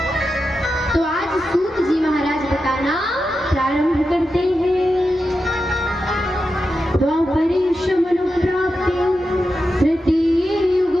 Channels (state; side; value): normal; both; correlation 0.89